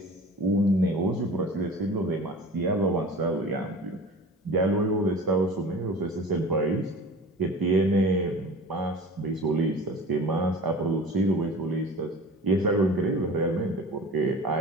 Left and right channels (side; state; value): both; normal; correlation 0.39